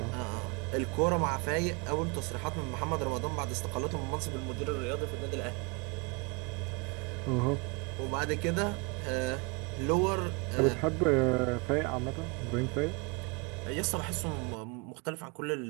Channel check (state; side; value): quieter; left; 30.8 dB